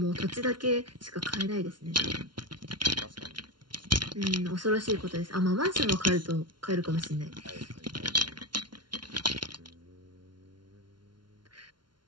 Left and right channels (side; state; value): left; late; 0.71 ms